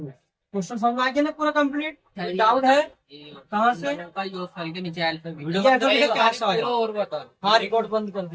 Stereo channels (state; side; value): identical; both; correlation 1.00